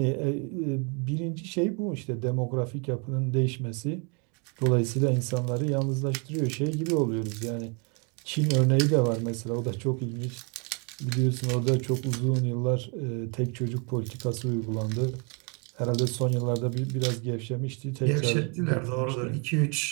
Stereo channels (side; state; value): left; quieter; 35.4 dB